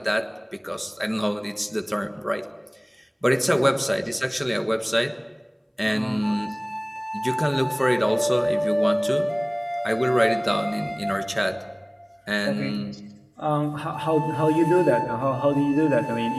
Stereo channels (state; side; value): identical; both; correlation 1.00